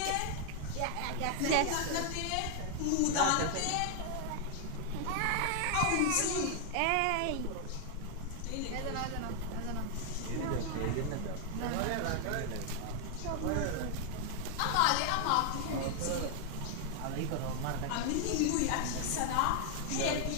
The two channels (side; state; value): both; different; correlation 0.00